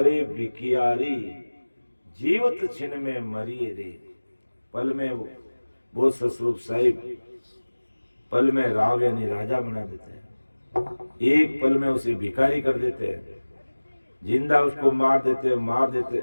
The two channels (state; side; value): inverted; both; correlation -1.00